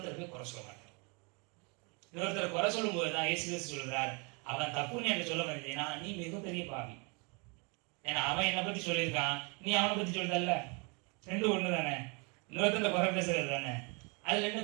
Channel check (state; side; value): quieter; left; 31.8 dB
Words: போய் குறை சொல்ல மாட்டார். இன்னொருத்தர் குறை சொல்லும் போதுதான் இயேசு கிறிஸ்து சொல்கிறார், அவன் தப்புன்னு எனக்கு சொல்ல வந்தீங்கன்னா நீ மிகப்பெரிய பாவி. ஏன்னா அவன் என்னை பத்தி சொல்லியிருக்கான், நீ அவனை பத்தி சொல்றல்ல, ரெண்டும் ஒண்ணு தானே. இன்னொருத்தர் குறை பேசுறது தானே, அதுல என்ன